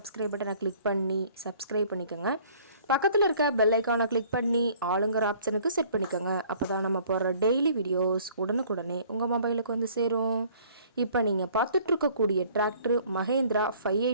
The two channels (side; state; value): both; inverted; correlation -0.55